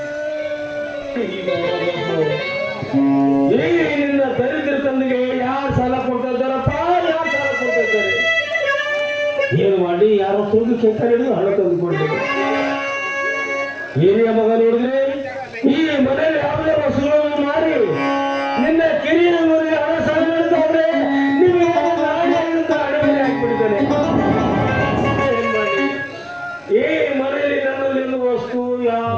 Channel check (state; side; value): identical; both; correlation 1.00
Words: ನಿನ್ನ ದರಿದ್ರ ತಂದೆಗೆ ಯಾರು ಸಾಲ ಕೊಡ್ತಾ ಇದ್ದಾರಪ್ಪ, ಯಾರು ಸಾಲ ಕೊಡ್ತಾ ಇದ್ದಾರೆ? ಏನು ಮಾಡಿ ಯಾರೋ ತೂಗಿ ಕೆಟ್ಟ ಹಿಡಿದು ಹಣ ತಂದುಕೊಂಡೆ. ಹಿರಿಯ ಮಗ ನೋಡಿದ್ರೆ ಈ ಮನೆಯಲ್ಲಿ ಯಾವುದೇ ವಸ್ತುಗಳನ್ನು ಮಾರಿ ನಿನ್ನ ಕಿರಿಯ ಮನೆಗೆ ಹಣ ಸಾಲ ಮಾಡ್ತಾವ್ರೆ. ನಿಮಗೆ ನಾಳೆಯಿಂದ ಅಡಿಗೆ ಹಾಕಿಬಿಡ್ತಾನೆ. ಏನ್ ಮಾಡಿ? ಈ ಮನೆಯಲ್ಲಿ ನನ್ನಲ್ಲಿ ಎನ್ನುವ ವಸ್ತು